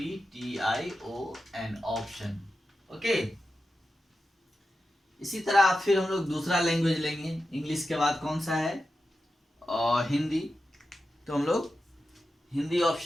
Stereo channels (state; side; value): normal; both; correlation 0.91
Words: ऑप्शन। ओके, इसी तरह फिर हम लोग दूसरा लैंग्वेज लेंगे। इंग्लिश के बाद कौन सा है, और हिंदी, तो हम लोग हिंदी